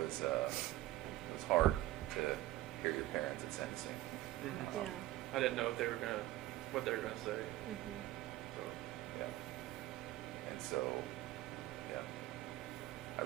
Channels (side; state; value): left; quieter; 16.0 dB